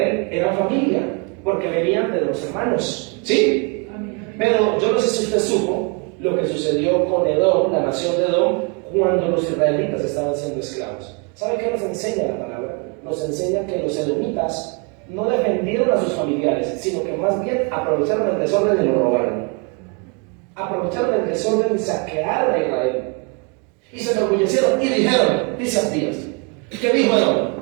eran familia, porque venían de los hermanos, ¿sí? Pero yo no sé si usted supo lo que sucedió con Edom, la nación de Edom, cuando los israelitas estaban siendo esclavos. ¿Sabe qué nos enseña la palabra? Nos enseña que los edomitas no defendieron a sus familiares, sino que más bien aprovecharon el desorden y lo robaron. Aprovecharon el desorden y saquearon a Israel. Y se enorgullecieron y dijeron, dice Abdías, ¿qué dijo Edom?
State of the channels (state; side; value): quieter; left; 34.5 dB